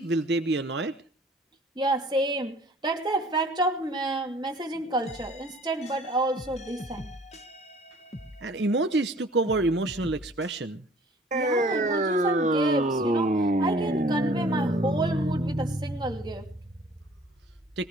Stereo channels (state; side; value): normal; both; correlation 0.52